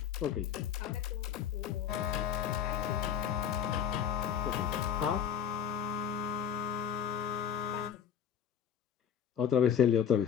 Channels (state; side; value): quieter; right; 8.5 dB